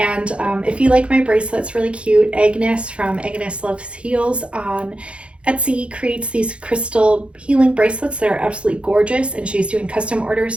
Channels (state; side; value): late; left; 0.059 ms